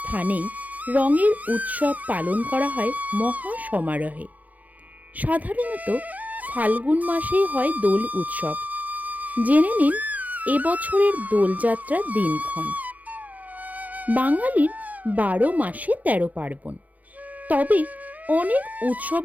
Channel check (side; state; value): left; late; 0.077 ms